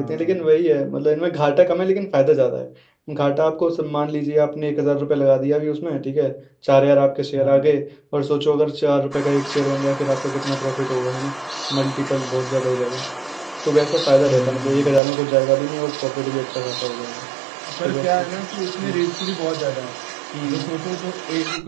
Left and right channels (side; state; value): left; drops out; at 15.0 s